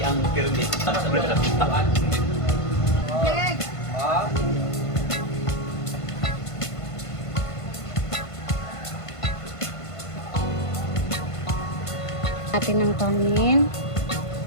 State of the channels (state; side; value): late; right; 1.5 ms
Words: ang pyramid. Leg! Natin ng kanin.